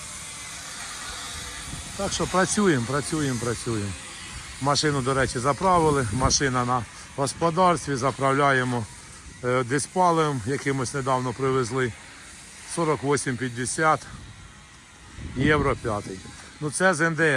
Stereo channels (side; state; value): both; identical; correlation 1.00